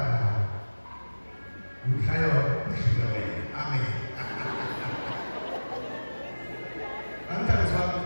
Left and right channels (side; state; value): both; inverted; correlation -1.00